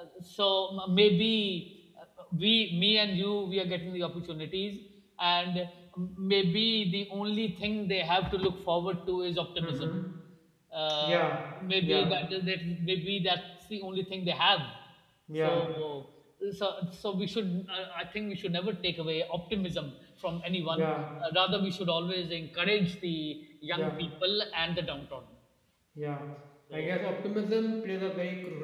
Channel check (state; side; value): identical; both; correlation 1.00